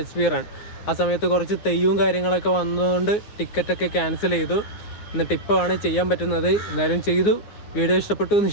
റൺ. ആ സമയത്ത് കുറച്ച് തെയ്യവും കാര്യങ്ങളൊക്കെ വന്നതുകൊണ്ട് ടിക്കറ്റൊക്കെ ക്യാൻസൽ ചെയ്തു. എന്നിട്ട് ഇപ്പോഴാണ് ചെയ്യാൻ പറ്റുന്നത്. എന്തായാലും ചെയ്തു. വീഡിയോ ഇഷ്ടപ്പെട്ടു എന്ന്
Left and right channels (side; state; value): right; late; 9.6 ms